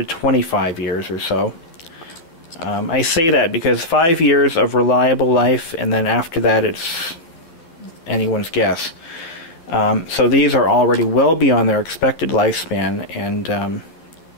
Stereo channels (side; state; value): right; late; 12 ms